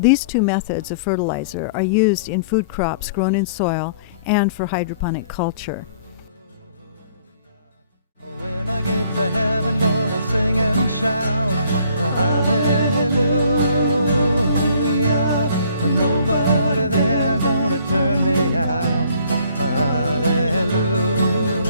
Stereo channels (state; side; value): inverted; both; correlation -0.58